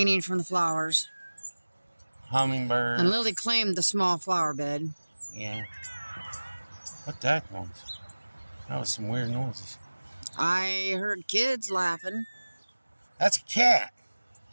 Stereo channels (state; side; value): inverted; both; correlation -1.00